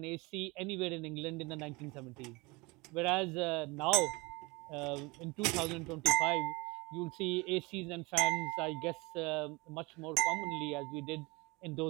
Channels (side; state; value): left; quieter; 25.3 dB